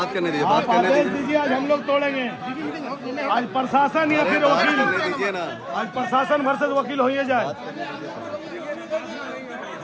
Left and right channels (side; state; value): both; identical; correlation 1.00